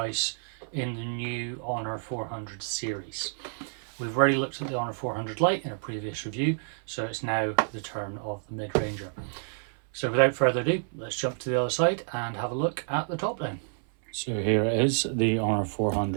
in the new Honor 400 series. We've already looked at the Honor 400 Lite in a previous review, so it's now the turn of the mid-ranger. So without further ado, let's jump to the other side and have a look at the top down. So here is the Honor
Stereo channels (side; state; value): left; silent; 59 dB below the other